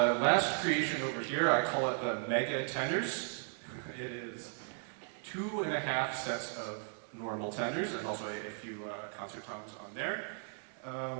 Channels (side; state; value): left; silent; 54 dB below the other